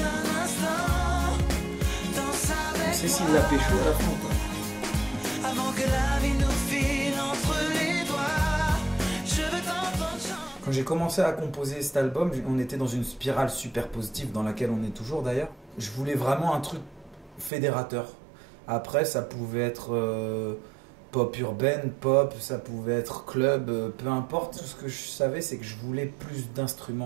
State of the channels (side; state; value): left; drops out; at 17.5 s